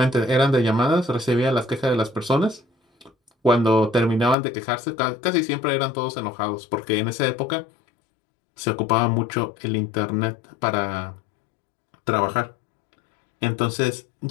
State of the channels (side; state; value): right; drops out; at 4.4 s